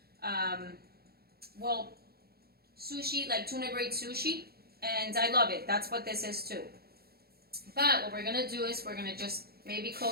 well, sushi, like tuna grade sushi, and I love it. That's what this is too. But what we're gonna do is we're gonna just maybe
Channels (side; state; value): left; late; 0.45 ms